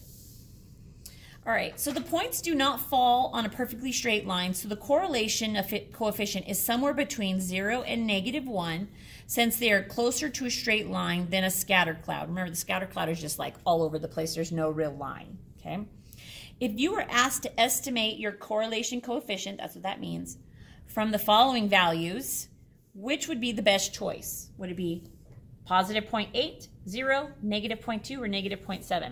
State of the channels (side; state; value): both; identical; correlation 1.00